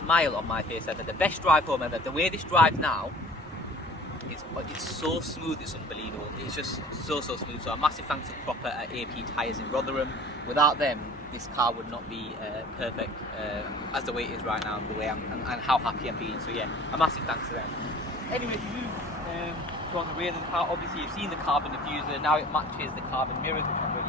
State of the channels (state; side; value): normal; both; correlation 0.45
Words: on my face ever, the best drive home ever. The way this drives now is it's so smooth, it's unbelievable. It's just so smooth. So a massive thanks to Proper at AP Tyres in Rotherham. Without them, this car would not be perfect as the way it is right now, the way and how happy I'm being. So yeah, a massive thanks to them. Anyway, to move on the rear of the car, obviously you've seen the carbon diffuser, now it matches the carbon mirrors, which I'm